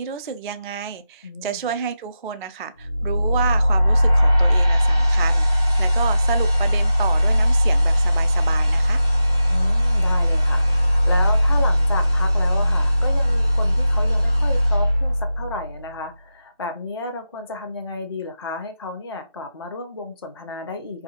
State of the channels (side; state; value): both; inverted; correlation -0.91